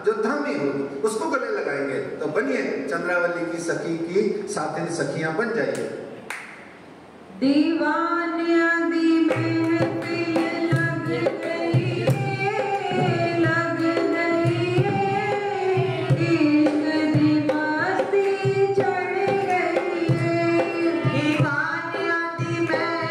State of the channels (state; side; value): identical; both; correlation 1.00